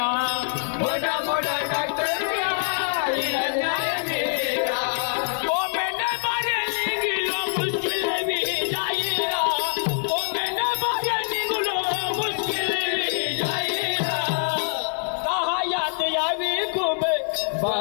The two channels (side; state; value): right; silent; digital silence